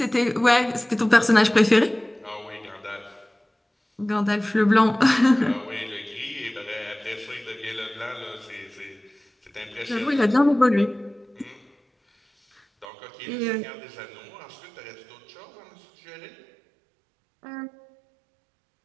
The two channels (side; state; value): left; drops out; at 12.9 s